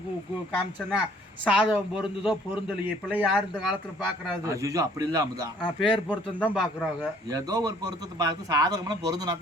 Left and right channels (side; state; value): both; normal; correlation 0.59